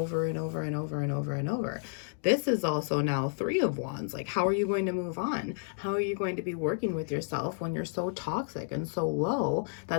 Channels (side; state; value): right; silent; digital silence